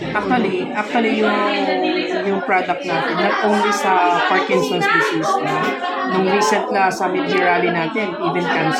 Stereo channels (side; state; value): both; identical; correlation 1.00